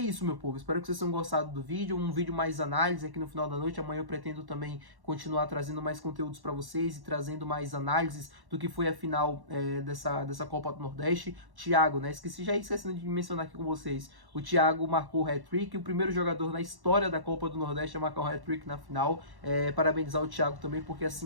meu povo, espero que vocês tenham gostado do vídeo, um vídeo mais análise aqui no final da noite. Amanhã eu pretendo também continuar trazendo mais conteúdos para vocês e trazendo mais análises do que foi a final dessa Copa do Nordeste. Thiago, né, esquecendo de mencionar aqui com vocês, o Thiago marcou o hat-trick, o primeiro jogador na história da Copa do Nordeste a marcar um hat-trick na final. Parabenizar o Thiago também, porque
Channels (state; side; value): late; left; 1.1 ms